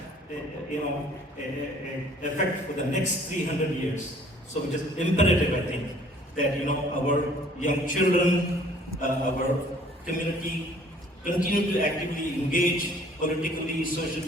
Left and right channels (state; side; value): normal; both; correlation 0.56